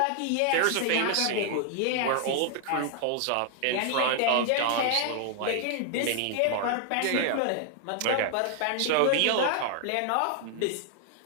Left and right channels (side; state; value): both; different; correlation 0.00